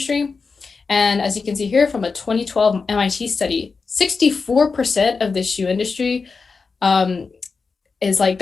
And as you can see here from a 2012 MIT study, 64% of the shoe industry is like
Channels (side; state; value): right; quieter; 4.7 dB